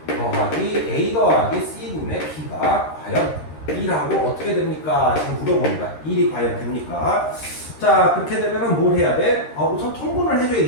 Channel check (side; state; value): right; late; 13 ms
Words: 더하기 a 더하기 c 분의 b가 과연 1하고 어떻게 됩니까? 지금 물어봅니다. 1이 과연 됩니까? 자, 그렇게 되면 뭘 해야 돼? 우선 통분을